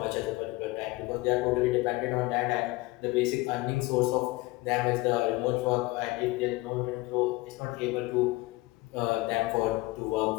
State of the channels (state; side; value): quieter; right; 21.3 dB